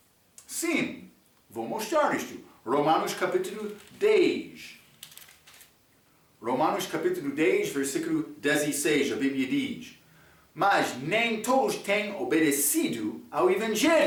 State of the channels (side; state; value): both; identical; correlation 1.00